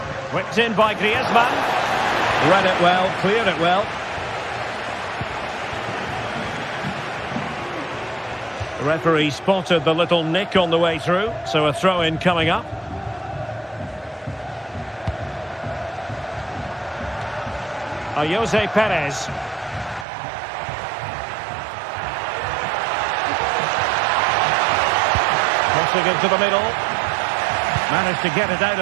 Whipped in by Griezmann. Read it well, cleared it well. The referee spotted the little nick on the way through, so a throw-in coming up. Jose Perez. Crossing into the middle. Managed to get it out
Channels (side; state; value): left; drops out; at 20.1 s